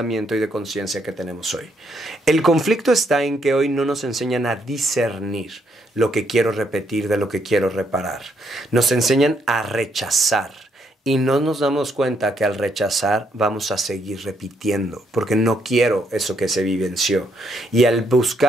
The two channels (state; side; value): normal; both; correlation 0.74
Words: y de conciencia que tenemos hoy. El conflicto está en que hoy no nos enseñan a discernir lo que quiero repetir de lo que quiero reparar. Nos enseñan a rechazar. Y no nos damos cuenta que al rechazar vamos a seguir repitiendo, porque no quiero eso que se vivenció. Y al